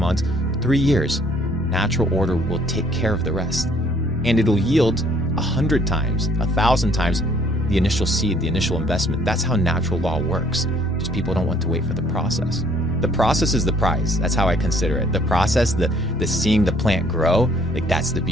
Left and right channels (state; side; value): normal; both; correlation 0.61